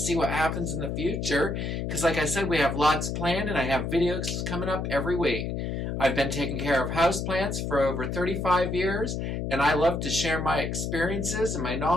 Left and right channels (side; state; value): left; noise; hum, 2 dB below the sound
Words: what happens in the future. Because like I said, we have lots planned and I have videos coming up every week. I've been taking care of houseplants for over 35 years, and I love to share my experiences and my